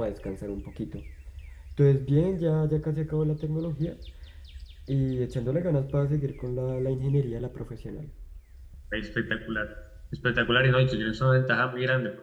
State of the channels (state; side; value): identical; both; correlation 1.00